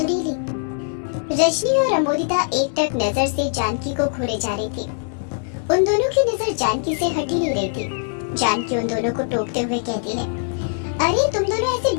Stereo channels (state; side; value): silent; right; digital silence